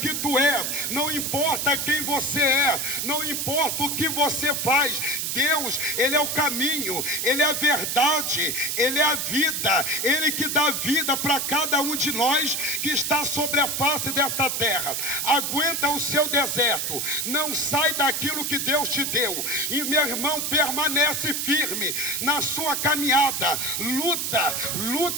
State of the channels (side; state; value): right; noise; hiss, 1 dB below the sound